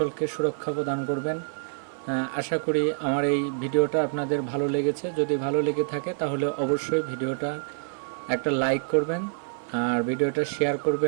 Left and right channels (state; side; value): silent; left; 57 dB below the other